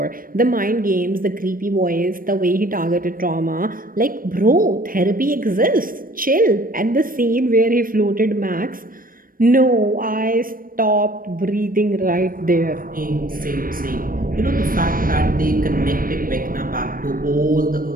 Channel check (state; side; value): late; left; 0.41 ms